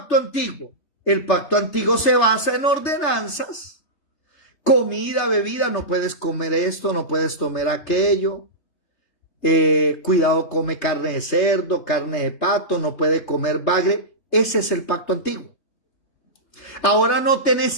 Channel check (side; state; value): right; late; 3.3 ms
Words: antiguo? El pacto antiguo se basa en ordenanzas. Comida, bebida, no puedes comer esto, no puedes tomar aquello. Cuidado, come carne de cerdo, carne de pato, no puede comer bagre. Ese es el pacto antiguo. Ahora noten